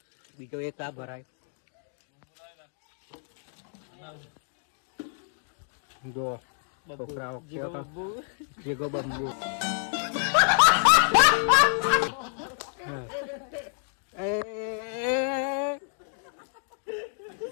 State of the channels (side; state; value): right; silent; 59 dB below the other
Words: બીજો એક આ ભરાય જો છોકરાઓ જેગો બંબુ